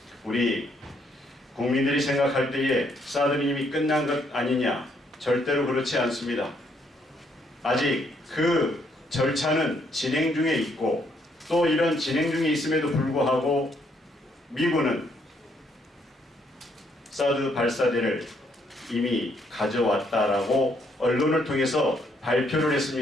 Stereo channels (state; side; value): normal; both; correlation 0.71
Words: 우리 국민들이 생각할 때에 사드는 이미 끝난 것 아니냐? 절대로 그렇지 않습니다. 아직 그 절차는 진행 중에 있고 또 이런 진행 중에 있음에도 불구하고 미군은 사드 발사대를 이미 가져왔다라고 언론을 통해서 발표를